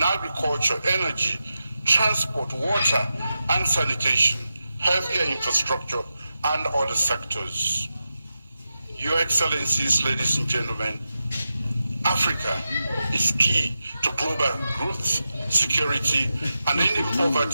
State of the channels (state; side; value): inverted; both; correlation -0.90